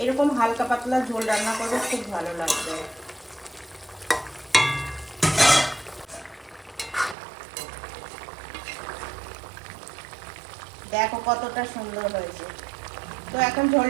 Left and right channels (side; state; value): left; drops out; at 7.2 s